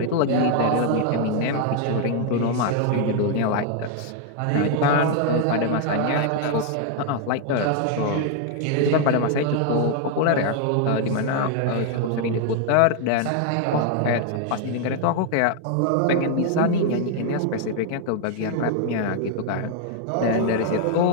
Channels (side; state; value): both; different; correlation 0.00